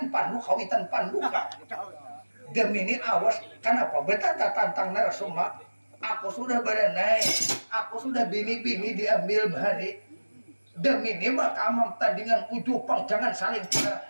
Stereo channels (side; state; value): both; inverted; correlation -1.00